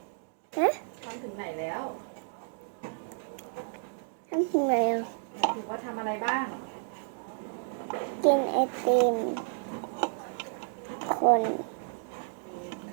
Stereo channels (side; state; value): left; silent; digital silence